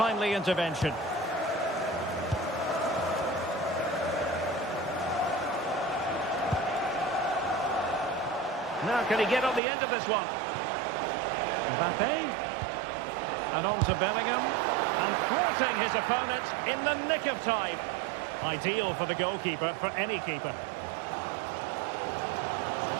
intervention. Now can he get on the end of this one? Mbappe. And on to Bellingham. And thwarting his opponent in the nick of time. Ideal for the goalkeeper, for any keeper.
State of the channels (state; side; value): drops out; left; at 9.6 s